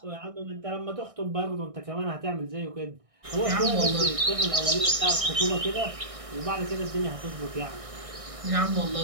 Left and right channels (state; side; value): late; left; 1.6 ms